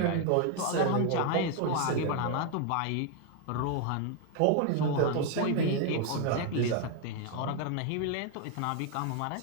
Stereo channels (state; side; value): different; both; correlation 0.01